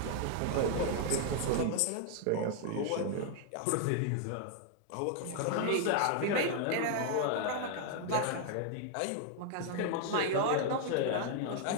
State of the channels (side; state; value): both; different; correlation 0.00